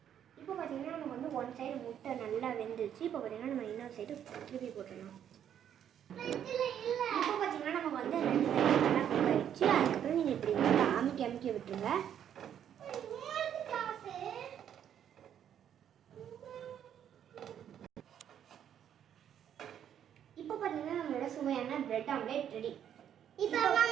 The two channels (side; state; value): left; quieter; 9.5 dB